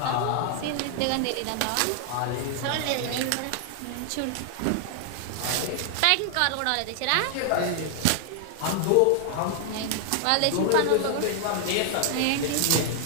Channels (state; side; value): different; both; correlation 0.00